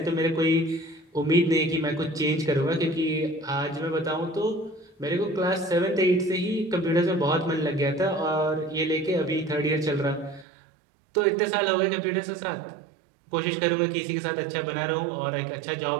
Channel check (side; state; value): left; drops out; at 10.5 s